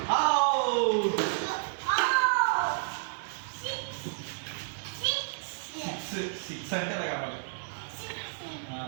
సిక్స్ అంటే అలా కావాలి.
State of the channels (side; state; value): left; silent; digital silence